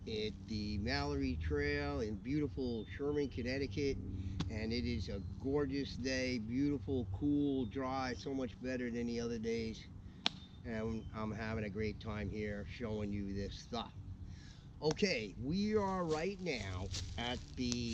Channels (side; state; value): both; identical; correlation 1.00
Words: at the Mallory Trail in beautiful Sherman, Connecticut. And it is a gorgeous day, beautiful, cool, dry, so much better than the other days. And I'm having a great time here showing you this stuff. Okay, we are right now at